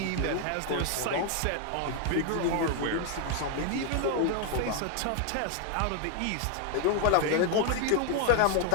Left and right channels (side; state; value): both; different; correlation 0.00